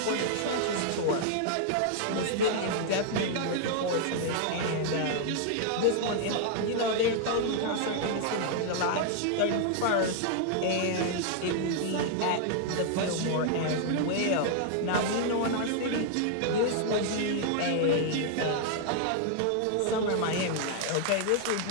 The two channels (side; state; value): both; different; correlation 0.00